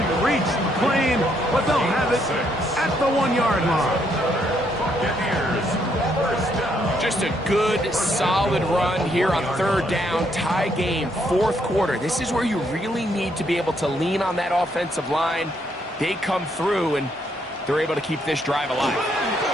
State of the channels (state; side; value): normal; both; correlation 0.73